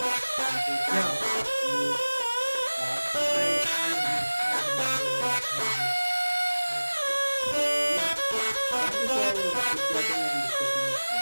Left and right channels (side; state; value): both; inverted; correlation -1.00